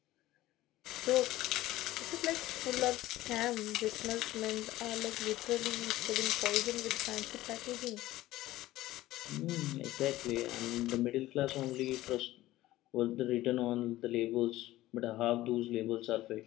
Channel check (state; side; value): quieter; right; 16.2 dB